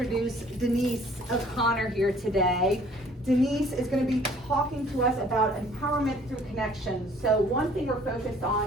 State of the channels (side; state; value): both; normal; correlation 0.56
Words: Denise O'Connor here today. Denise is going to be talking to us about empowerment through connections. So one thing we're focused